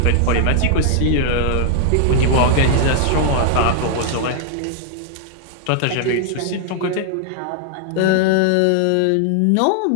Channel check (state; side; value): different; both; correlation -0.01